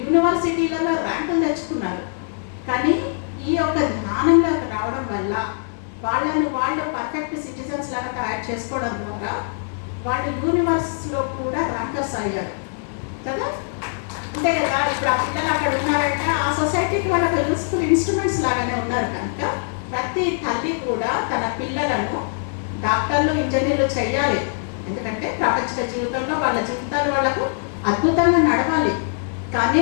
ర్యాంకులు తెచ్చుకున్నారు. కానీ ఈ యొక్క జ్ఞానంలోకి రావడం వల్ల వాళ్ళు పర్ఫెక్ట్ సిటిజన్స్ లాగా తయారు చేసుకోవడం ద్వారా వాళ్ళు యూనివర్సిటీలో కూడా ర్యాంకర్స్ అయ్యారు కదా. అంతే కదా, ఇప్పుడు ఆ పిల్లలు అక్కడ ఉన్నారంటే ఆ సొసైటీకి వాళ్ళకి యూస్ఫుల్ ఇన్స్ట్రుమెంట్స్ లాగానే ఉన్నారు. కనుక ప్రతి తల్లి కూడా తన పిల్లలను డాక్టర్లు, ఇంజనీర్లు చేయాలి. ఎందుకంటే ప్రపంచ జీవితంలో వాళ్ళ జీవితాలు వాళ్ళకు అద్భుతంగా నడవాలి. కానీ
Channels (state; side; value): silent; right; digital silence